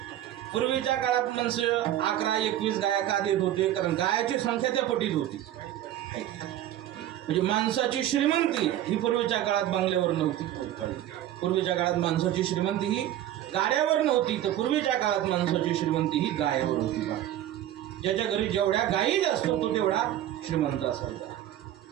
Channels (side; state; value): left; quieter; 12.5 dB